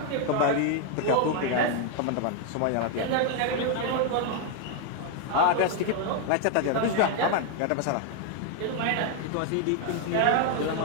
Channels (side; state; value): both; different; correlation 0.00